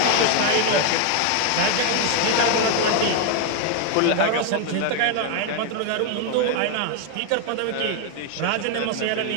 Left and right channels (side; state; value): both; different; correlation 0.01